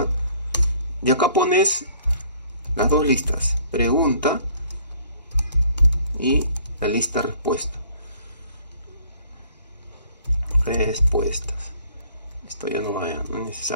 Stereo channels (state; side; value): inverted; both; correlation -0.57